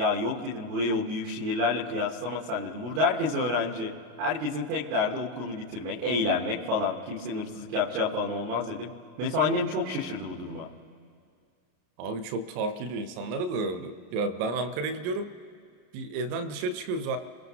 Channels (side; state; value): left; late; 33 ms